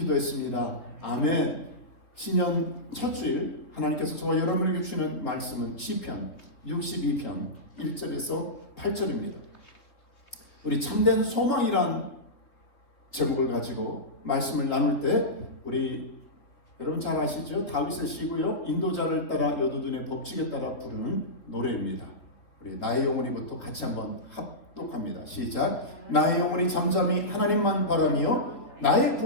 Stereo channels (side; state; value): right; late; 3.2 ms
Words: 아멘. 신년 첫 주일 하나님께서 저와 여러분에게 주시는 말씀은 시편 62편 1절에서 8절입니다. 우리 참된 소망이란 제목을 가지고 말씀을 나눌 때 우리 여러분 잘 아시죠? 다윗의 시고요. 인도자를 따라 여두둔의 법칙에 따라 부르는 노래입니다. 우리 나의 영혼이부터 같이 한번 합독합니다. 시작. 나의 영혼이 잠잠히 하나님만 바라며 나의